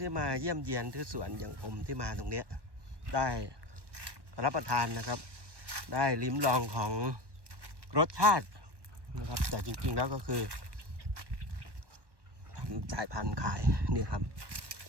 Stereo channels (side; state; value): left; late; 1.1 ms